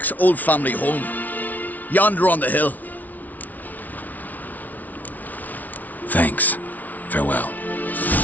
old family home. Yonder on the hill. Thanks. Farewell.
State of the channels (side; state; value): right; late; 0.077 ms